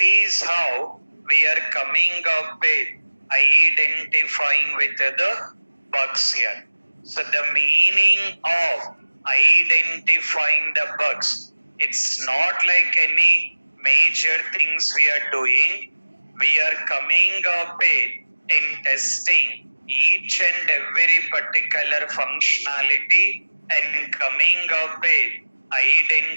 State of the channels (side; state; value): both; inverted; correlation -1.00